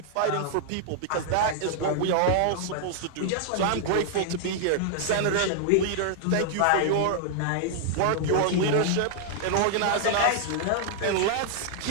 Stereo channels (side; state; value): both; different; correlation -0.01